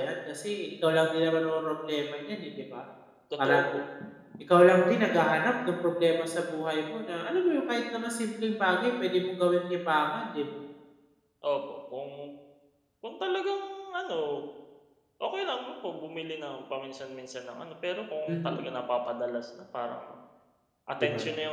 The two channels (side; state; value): both; identical; correlation 1.00